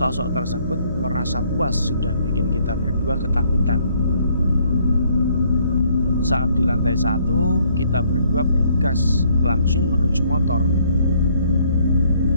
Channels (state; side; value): inverted; both; correlation -0.66